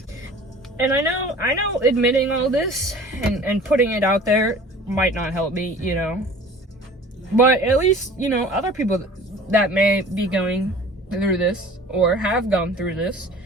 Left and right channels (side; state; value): both; normal; correlation 0.45